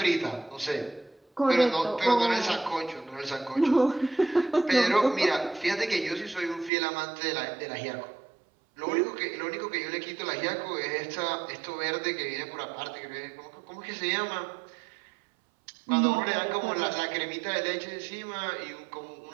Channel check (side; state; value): left; drops out; at 6.7 s